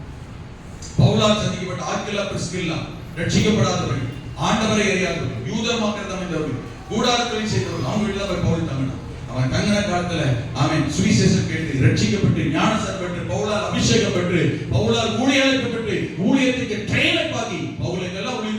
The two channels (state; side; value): identical; both; correlation 1.00